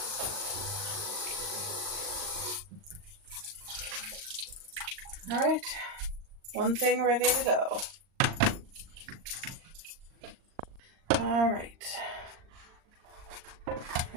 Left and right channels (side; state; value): left; late; 39 ms